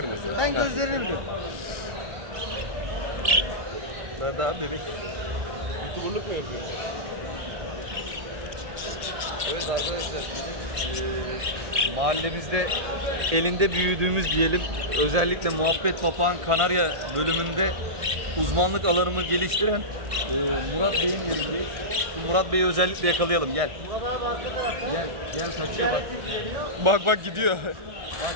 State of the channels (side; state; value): left; late; 1.5 ms